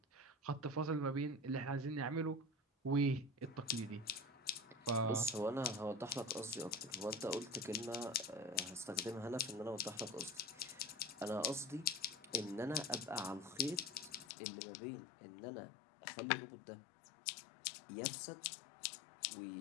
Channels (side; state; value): right; drops out; at 14.2 s